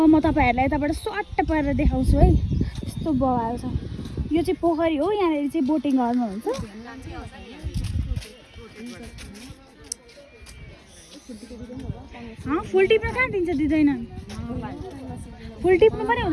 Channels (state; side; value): identical; both; correlation 1.00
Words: म तपाईँहरूलाई यताबाट स्वाट्ट पारेर देखाउँछु है यस्तो बवाल छ यो चाहिँ पोखरी हो यहाँनिर चाहिँ बोटिङ गर्नुहुन्छ फुल टिप्न कहाँ दिन्छ दिँदैन फुल टिप्नु पनि